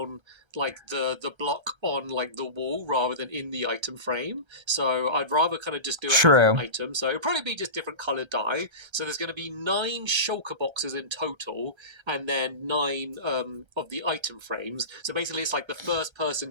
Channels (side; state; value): left; late; 1.3 ms